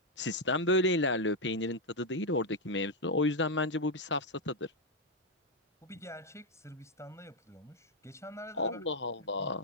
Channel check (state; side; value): normal; both; correlation 0.01